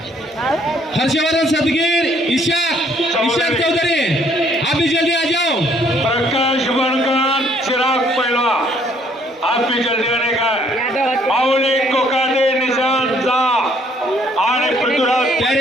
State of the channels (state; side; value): normal; both; correlation 0.64